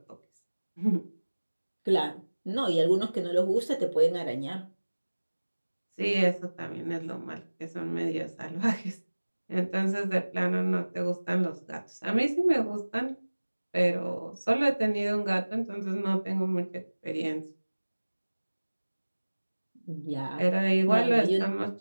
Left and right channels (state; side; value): inverted; both; correlation -1.00